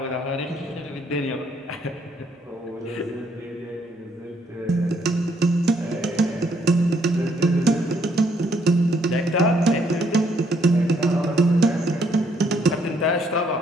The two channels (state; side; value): normal; both; correlation 0.70